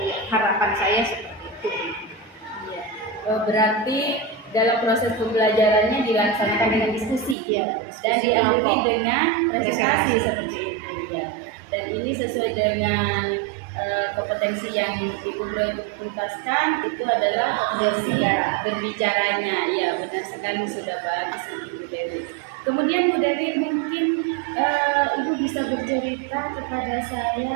harapan saya seperti itu. Iya. Berarti dalam proses pembelajarannya dilaksanakan dengan diskusi, Ya, dan diskusi diakhiri kelompok. dengan presentasi Presentasi. seperti itu ya. Dan ini sesuai dengan kompetensi yang Ibu prioritaskan, itu adalah kompetensi berbicaranya. Ya, benar sekali, sudah bagus Ibu Dewi. Kemudian Bu Dewi, mungkin Ibu bisa bercerita kepada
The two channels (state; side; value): drops out; left; at 7.4 s